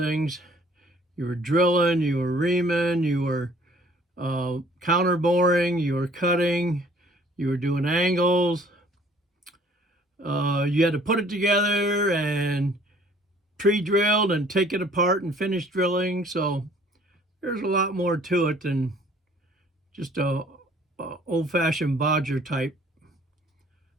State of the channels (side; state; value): both; normal; correlation 0.56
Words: you were drilling, you were reaming, you were counter boring, you were cutting, you were doing angles. You had to put it together and pre-drilled and take it apart and finish drilling. So there's a lot more to it than just a old-fashioned bodger type